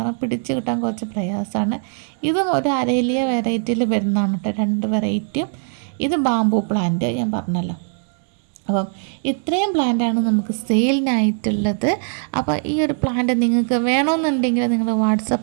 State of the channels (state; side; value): silent; left; 65 dB below the other